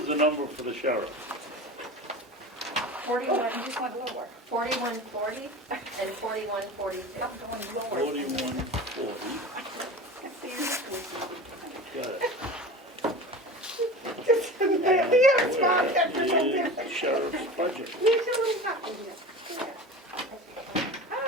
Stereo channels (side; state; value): both; normal; correlation 0.33